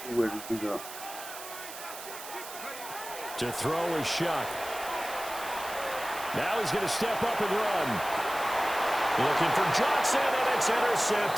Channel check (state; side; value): noise; right; hiss, 12 dB below the sound